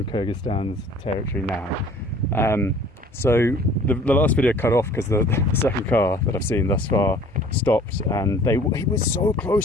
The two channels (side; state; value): both; normal; correlation 0.51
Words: Kyrgyzstan's territory now. So the last video cut off because the second car that I've seen thus far stopped, and he was so